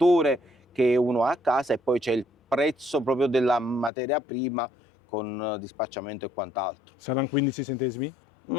che uno ha a casa, e poi c'è il prezzo proprio della materia prima con dispacciamento e quant'altro. Saranno 15 centesimi?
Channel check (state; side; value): drops out; right; at 3.9 s